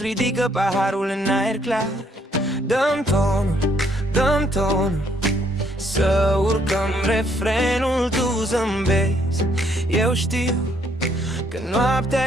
ridică paharul în aer clar. Dăm tonul, să urcăm refrenul, tu zâmbezi. Eu știu că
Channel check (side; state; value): both; normal; correlation 0.68